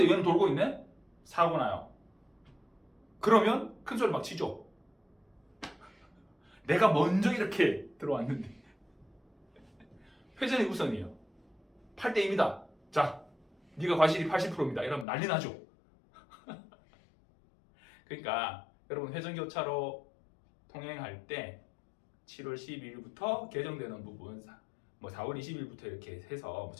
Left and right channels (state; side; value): drops out; right; at 15.1 s